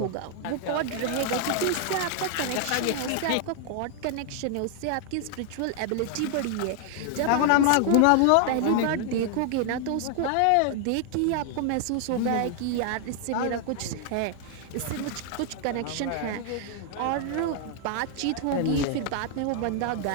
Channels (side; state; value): both; different; correlation 0.00